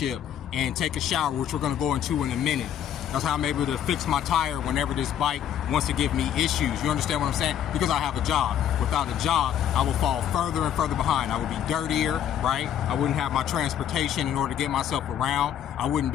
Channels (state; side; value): quieter; right; 9.8 dB